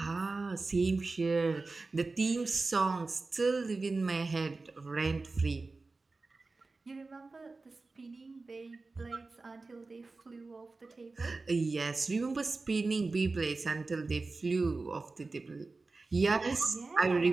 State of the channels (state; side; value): quieter; left; 3.7 dB